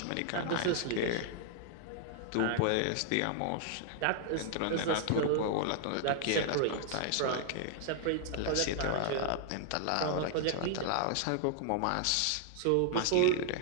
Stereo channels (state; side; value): different; both; correlation 0.00